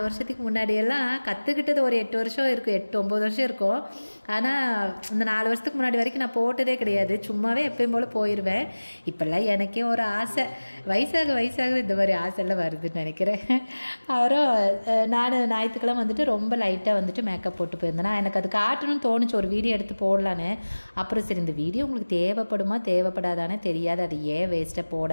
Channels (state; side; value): inverted; both; correlation -1.00